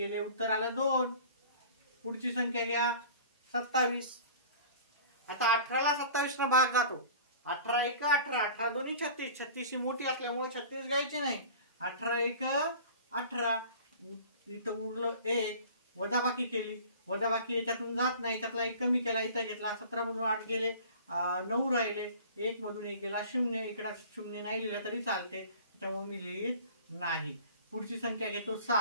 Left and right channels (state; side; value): inverted; both; correlation -0.43